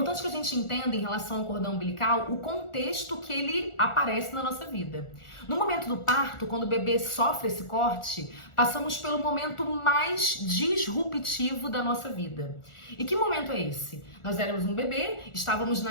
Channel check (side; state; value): right; late; 1.4 ms